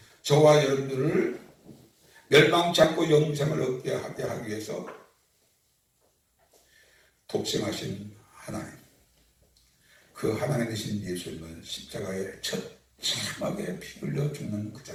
저와 여러분들을 멸망치 않고 영생을 얻게 하기 위해서 독생하신 하나님, 그 하나님 되신 예수님을 십자가에 처참하게 피 흘려 죽는 그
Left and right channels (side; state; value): both; identical; correlation 1.00